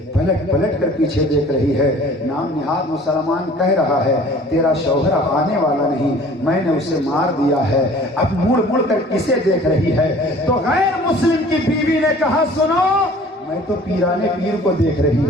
پلٹ کر پیچھے دیکھ رہی ہے. نام نہاد مسلمان کہہ رہا ہے تیرا شوہر آنے والا نہیں, میں نے اسے مار دیا ہے, اب مڑ کر کسے دیکھ رہی ہے؟ تو غیر مسلم کی بیوی نے کہا سنو میں تو پیرانے پیر کو دیکھ رہی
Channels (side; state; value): both; normal; correlation 0.49